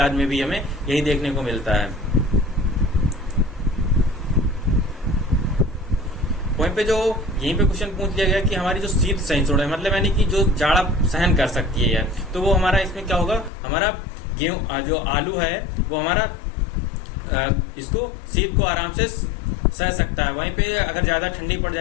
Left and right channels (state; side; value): drops out; right; at 13.5 s